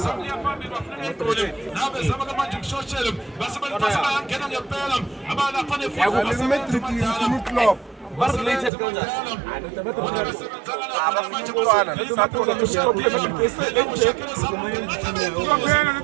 phambili bafuna egoli nawe bezama manje ukushoshela basebangena ngempela abalapha club. Related kanjani?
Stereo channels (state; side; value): drops out; left; at 8.7 s